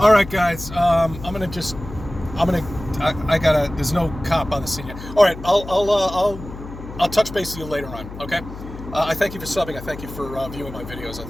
right, guys. There's no cop on the scene yet. All right, I'll touch base with you later on. Okay. I thank you for subbing. I thank you for viewing my videos. I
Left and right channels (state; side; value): noise; left; hum, 12 dB below the sound